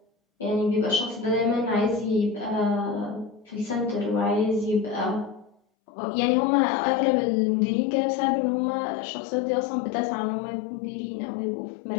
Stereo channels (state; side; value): drops out; right; at 5.6 s